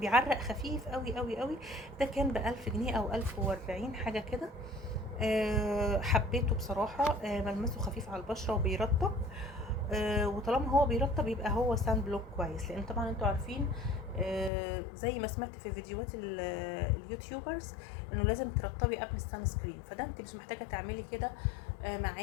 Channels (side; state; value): right; drops out; at 14.5 s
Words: خفيف قوي قوي قوي. ده كان ب1000 جنيه او 1040 حاجه كده. حبيته بصراحه. ملمسه خفيف على البشره وبيرطب. وطالما هو بيرطب يبقى هو سان بلوك كويس، لان طبعا انتوا عارفين زي ما سمعت في فيديوهات اليوتيوبرز انه لازم ترطبي قبل السان سكرين، فده انت مش محتاجه تعملي كده